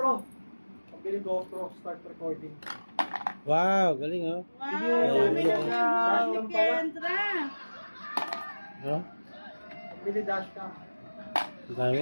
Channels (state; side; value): inverted; both; correlation -1.00